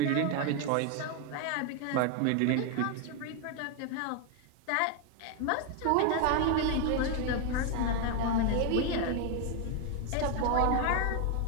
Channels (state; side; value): different; both; correlation 0.01